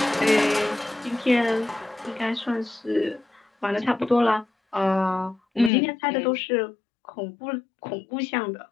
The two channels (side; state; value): right; drops out; at 5.7 s